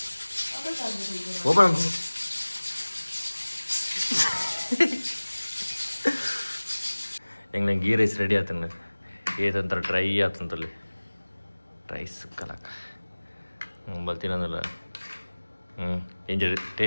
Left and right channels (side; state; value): both; inverted; correlation -1.00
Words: ಓಪನ್ ಹೆಂಗೆ ಗೀ ರೈಸ್ ರೆಡಿ ಆತಂಗ ಏದಂತರ ಡ್ರೈ ಆತಂತಲ್ಲಿ ರೈಸ್ ಕಲಾಕ ಬರ್ತೀನಂದಲ್ಲ ಇಂಜ